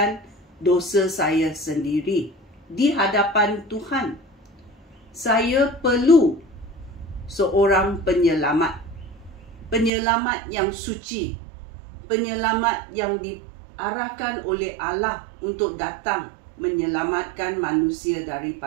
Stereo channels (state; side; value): drops out; left; at 9.9 s